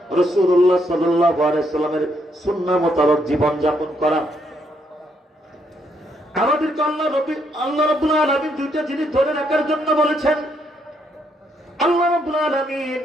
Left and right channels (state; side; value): normal; both; correlation 0.74